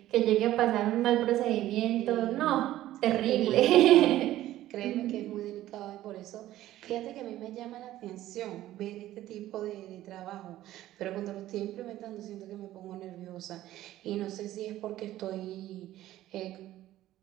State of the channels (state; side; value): quieter; left; 14.3 dB